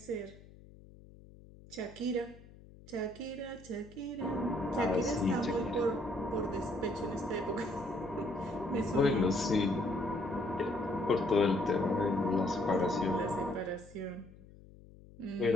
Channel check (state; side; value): noise; left; hum, 21 dB below the sound